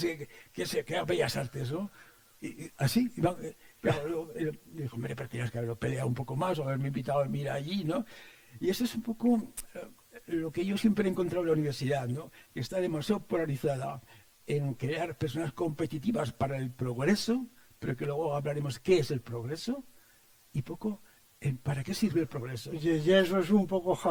haga bellas artes, ¿no? Y así, claro, dijo, hombre, pero tienes que haberlo peleado un poco más o haberme invitado a mirar allí, ¿no? Y eso es un poco lo que yo siempre he encontrado en la universidad, ¿no? Que está demasiado polarizada en crear personas competitivas para el progreso, pero que luego hablaremos qué es el progreso, y poco en para qué sirve el progreso. Y eso es un poco,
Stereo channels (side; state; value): both; identical; correlation 1.00